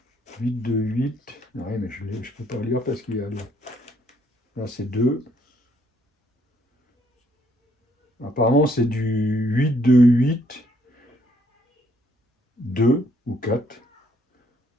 8, 2, 8. Oui, mais je ne peux pas lire parce qu'il y a le... Là, c'est 2. Apparemment, c'est du 8, 2, 8, 2 ou 4.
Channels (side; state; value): both; normal; correlation 0.68